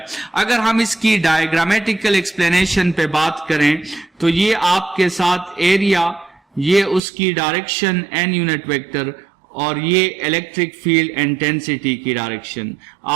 अगर हम इसकी डायग्रामेटिकल एक्सप्लेनेशन पे बात करें तो ये आपके साथ एरिया, ये उसकी डायरेक्शन n यूनिट वेक्टर और ये इलेक्ट्रिक फील्ड इंटेंसिटी की डायरेक्शन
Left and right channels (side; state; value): left; drops out; at 7.0 s